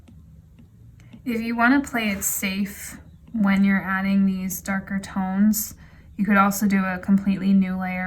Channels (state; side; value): identical; both; correlation 1.00